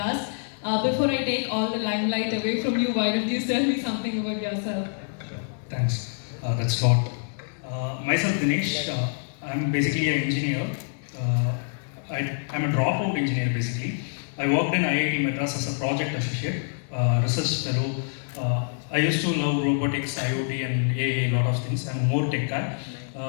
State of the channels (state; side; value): silent; right; 61 dB below the other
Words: Before I take all the limelight away from you, why don't you tell me something about yourself? Thanks. That's a lot. Myself, Dinesh, I'm basically an engineer. I'm a dropout engineer basically. I worked in IIT Madras as a project associate, research fellow. I used to love robotics, IoT and AI, a lot of things. I'm more tech guy.